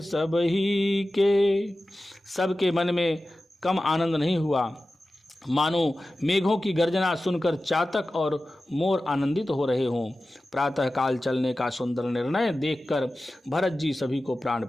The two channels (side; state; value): both; normal; correlation 0.95